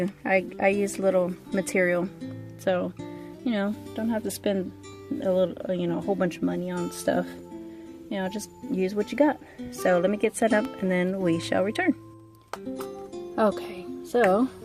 I use little material, so, you know, don't have to spend a little, you know, a whole bunch of money on stuff. You know, just use what you got. So let me get set up, and then we shall return. Okay, so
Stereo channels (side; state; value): both; identical; correlation 1.00